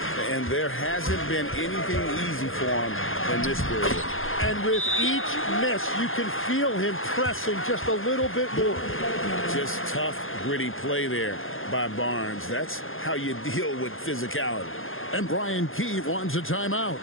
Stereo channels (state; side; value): late; right; 0.60 ms